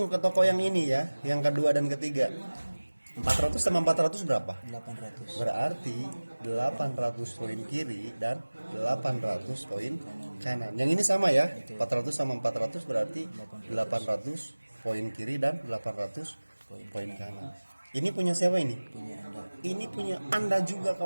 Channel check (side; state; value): both; inverted; correlation -1.00